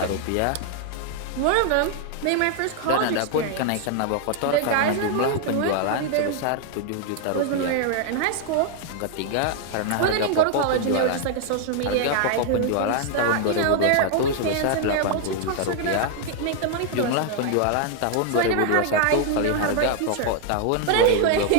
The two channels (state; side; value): different; both; correlation 0.00